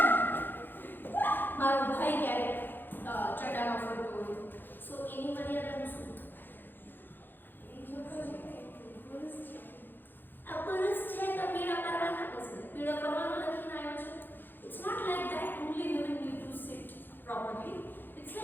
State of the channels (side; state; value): right; late; 0.094 ms